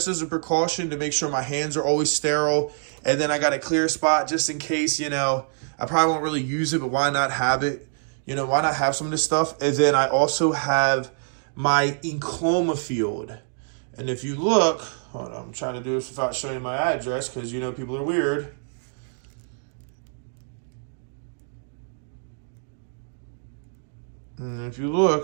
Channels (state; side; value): silent; left; digital silence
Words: as a precaution to make sure my hands are always sterile. And then I got a clear spot just in case, you know, I probably won't really use it, but why not have it? You know, why not have some of this stuff? And then I also have my encloma field. And if you look, hold on, I'm trying to do this without showing you my address because, you know, people are weird. And if you